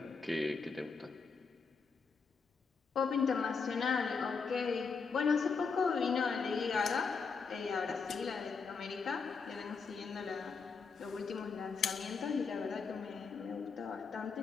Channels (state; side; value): quieter; right; 5.2 dB